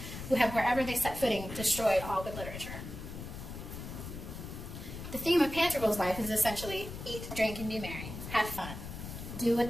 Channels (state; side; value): noise; left; rumble, 9 dB below the sound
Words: who have wherever they set footing destroyed all good literature." The theme of Pantagruel's life is essentially eat, drink, and be merry. Have fun. Do what